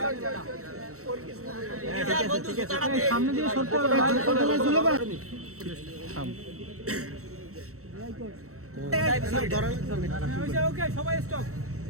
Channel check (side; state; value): left; late; 0.64 ms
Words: সামনে দিয়ে সরতে হবে